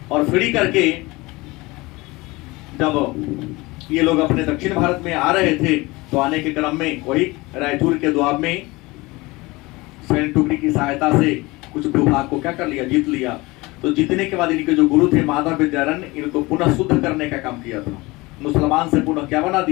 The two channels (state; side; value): quieter; right; 22.4 dB